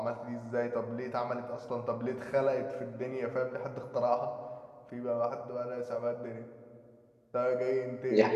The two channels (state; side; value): identical; both; correlation 1.00